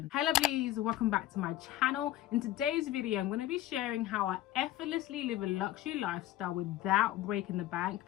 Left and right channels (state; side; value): quieter; right; 14.4 dB